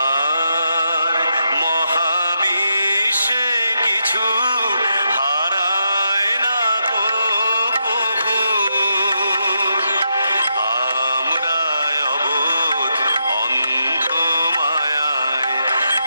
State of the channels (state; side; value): inverted; both; correlation -0.82